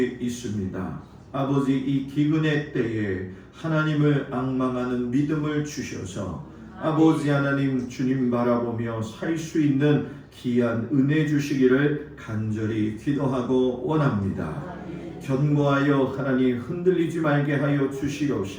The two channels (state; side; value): identical; both; correlation 1.00